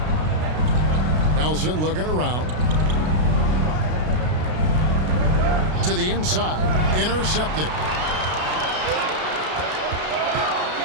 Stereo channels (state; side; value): late; left; 33 ms